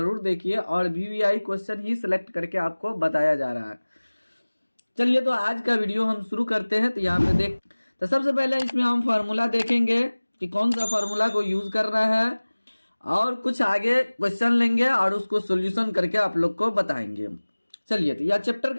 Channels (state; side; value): inverted; both; correlation -1.00